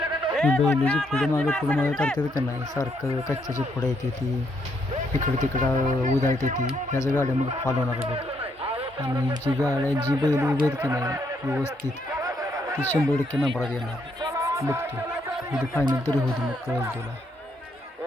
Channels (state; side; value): normal; both; correlation 0.75